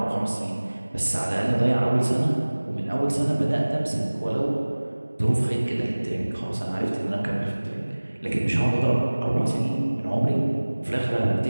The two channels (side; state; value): both; inverted; correlation -1.00